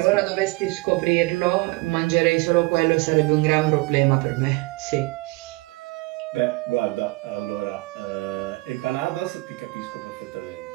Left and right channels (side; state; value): left; quieter; 23.6 dB